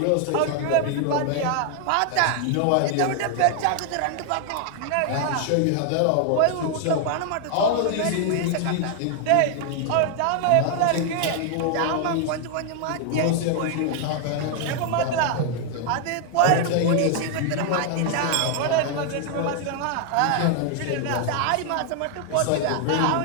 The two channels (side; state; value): both; different; correlation 0.00